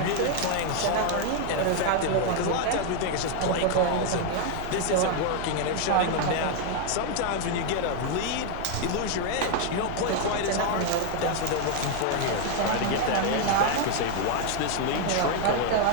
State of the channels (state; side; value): different; both; correlation 0.00